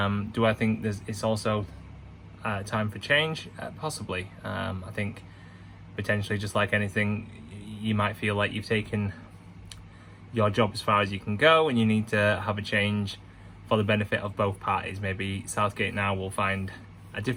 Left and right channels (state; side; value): identical; both; correlation 1.00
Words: I think it's also time for change? Possibly. I think potentially, just like anything, you might feel like you've taken your job as far as you can go and you need to have a change for the benefit of both parties. Maybe Southgate now will find a